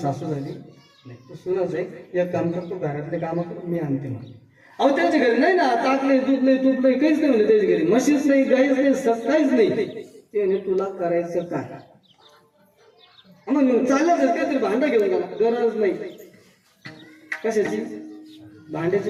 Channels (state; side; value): identical; both; correlation 1.00